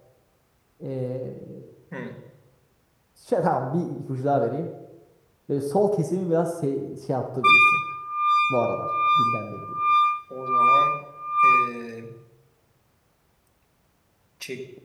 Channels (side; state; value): both; identical; correlation 1.00